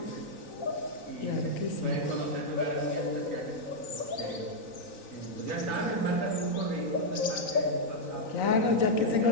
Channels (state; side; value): late; right; 3.9 ms